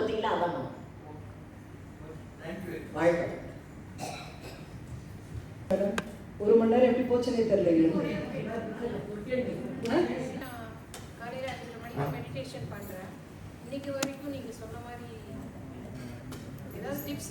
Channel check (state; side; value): identical; both; correlation 1.00